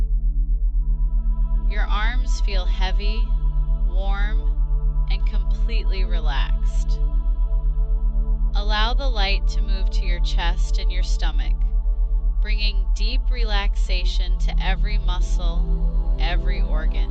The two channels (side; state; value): both; identical; correlation 1.00